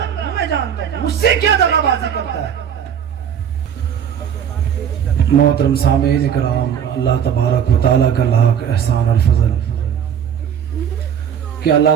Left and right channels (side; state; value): left; quieter; 8.5 dB